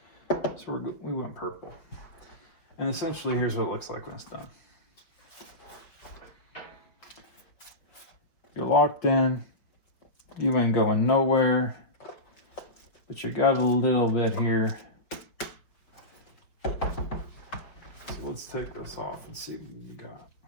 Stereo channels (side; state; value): right; late; 5.4 ms